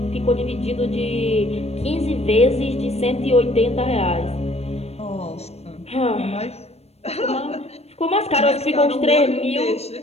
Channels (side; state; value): right; late; 0.30 ms